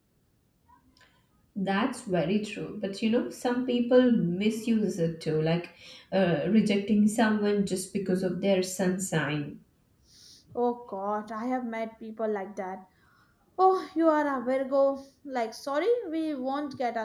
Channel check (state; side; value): identical; both; correlation 1.00